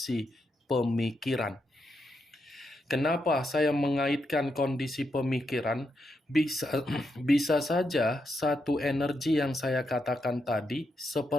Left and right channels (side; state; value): both; normal; correlation 0.83